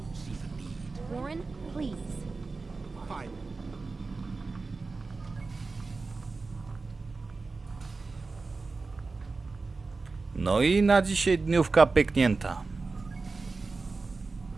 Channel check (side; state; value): left; quieter; 3.9 dB